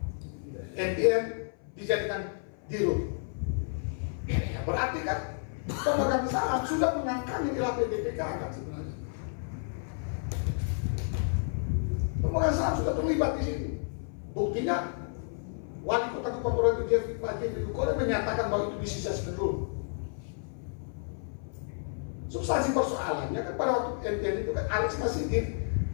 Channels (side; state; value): right; silent; 55 dB below the other